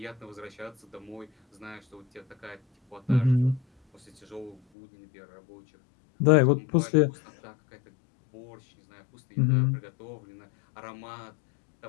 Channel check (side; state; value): right; drops out; at 4.6 s